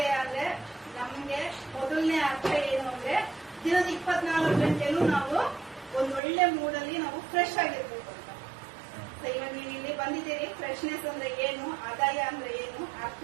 ಅಂದ್ರೆ ನಮ್ಗೆ ಮೊದಲನೇ ಅರ್ಥ ಏನು ಅಂದ್ರೆ ದಿನದ 24 ಗಂಟೆನೂ ನಾವು ಒಂದ್ ಒಳ್ಳೆ ಮೂಡಲ್ಲಿ ನಾವು ಫ್ರೆಶ್ ಆಗಿರ್ಬೇಕು ಅಂತ. ಇವಾಗ ನೀವು ಇಲ್ಲಿ ಬಂದಿದ್ದೀರಿ. ಫ್ರೆಶ್ನೆಸ್ ಅಂದ್ರೆ ಏನು, ಆದಾಯ ಅಂದ್ರೆ ಏನು,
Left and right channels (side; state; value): left; drops out; at 6.2 s